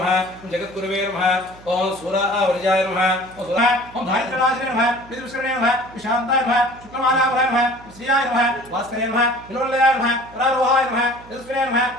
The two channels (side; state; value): right; noise; hum, 22 dB below the sound